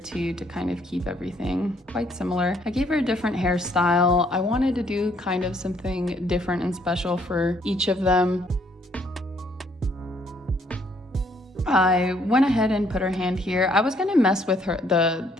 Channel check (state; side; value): normal; both; correlation 0.66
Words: to kind of keep everything quite similar. I gave her a different hairstyle. I wanted to do kind of something different and special for each of them. I went ahead and put her hand here. I was gonna mess with her,